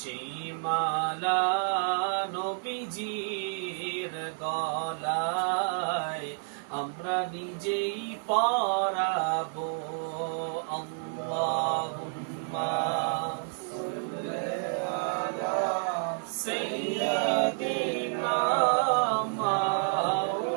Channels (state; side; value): silent; left; 55 dB below the other